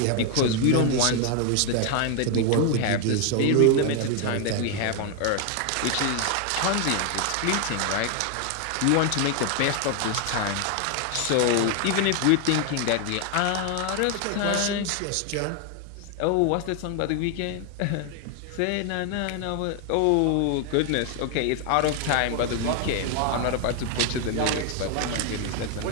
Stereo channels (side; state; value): both; different; correlation 0.01